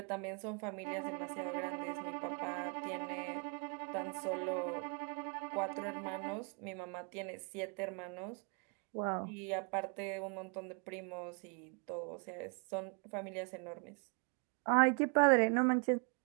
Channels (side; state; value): left; quieter; 36.3 dB